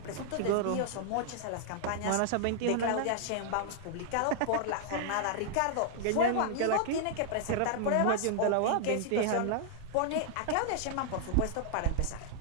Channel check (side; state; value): both; different; correlation -0.01